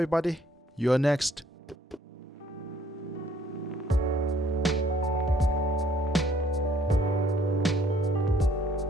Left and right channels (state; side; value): normal; both; correlation 0.63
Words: buddy. You're next.